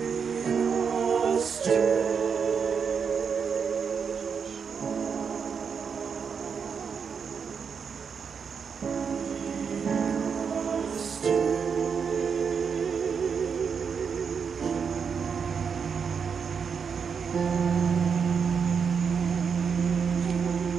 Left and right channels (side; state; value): left; quieter; 6.3 dB